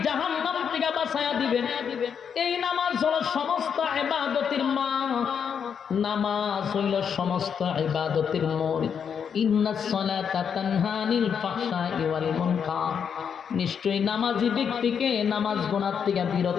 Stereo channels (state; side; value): quieter; right; 7.3 dB